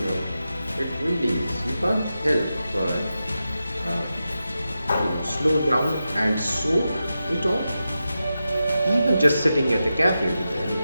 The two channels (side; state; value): both; inverted; correlation -0.90